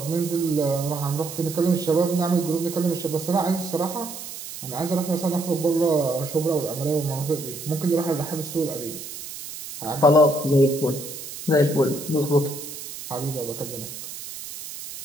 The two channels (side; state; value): right; noise; hiss, 11 dB below the sound